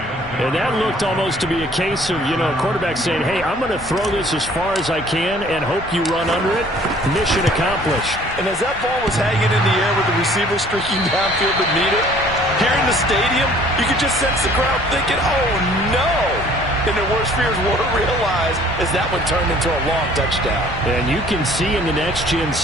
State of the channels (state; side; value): normal; both; correlation 0.55